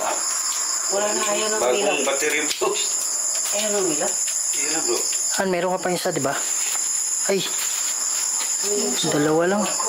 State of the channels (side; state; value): both; identical; correlation 1.00